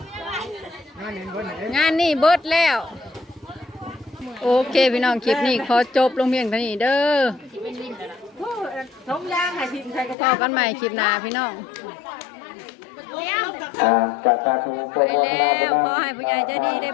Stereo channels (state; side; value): drops out; right; at 10.2 s